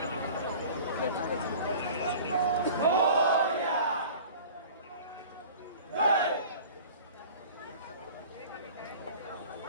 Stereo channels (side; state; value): both; inverted; correlation -0.42